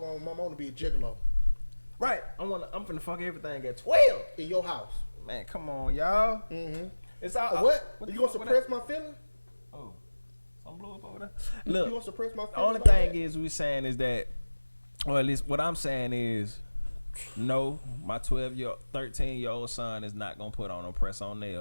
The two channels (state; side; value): inverted; both; correlation -1.00